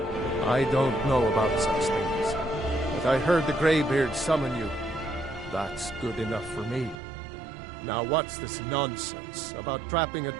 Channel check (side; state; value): left; drops out; at 7.0 s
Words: I don't know about such things, but I heard the Greybeard summon you. That's good enough for me. Now what's this nonsense about trapping a